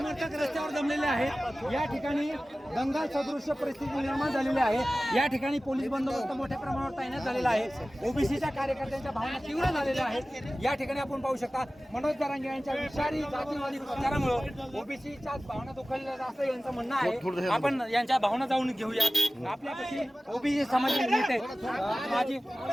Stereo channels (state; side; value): normal; both; correlation 0.96